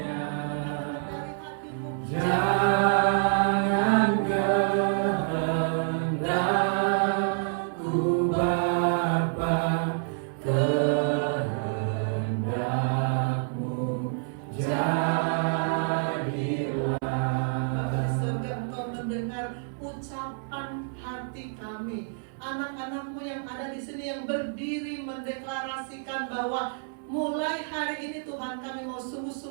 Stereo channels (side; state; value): left; silent; 59 dB below the other